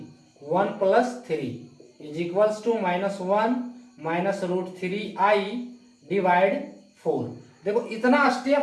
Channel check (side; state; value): both; identical; correlation 1.00